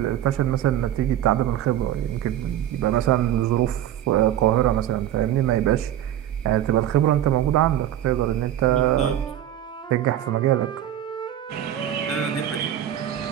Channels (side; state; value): left; quieter; 11.7 dB